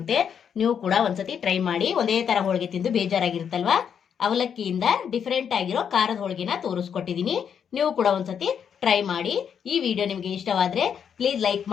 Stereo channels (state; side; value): quieter; right; 7.8 dB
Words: ನೀವು ಕೂಡ ಒಂದ್ಸತಿ ಟ್ರೈ ಮಾಡಿ. ಒಂದೇ ಥರ ಹೋಳಿಗೆ ತಿಂದು ಬೇಜಾರಾಗಿರುತ್ತಲ್ವಾ, ಅವಲಕ್ಕಿಯಿಂದ ಡಿಫ್ರೆಂಟ್ ಆಗಿರೋ ಖಾರದ ಹೋಳಿಗೆನ ತೋರಿಸ್ಕೊಟ್ಟಿದ್ದೀನಿ. ನೀವು ಕೂಡ ಒಂದ್ಸತಿ ಟ್ರೈ ಮಾಡಿ. ಈ ವಿಡಿಯೋ ನಿಮಗೆ ಇಷ್ಟವಾದರೆ ಪ್ಲೀಸ್ ಲೈಕ್